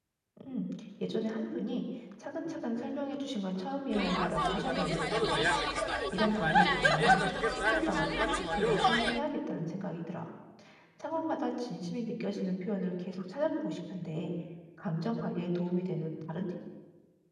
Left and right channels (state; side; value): identical; both; correlation 1.00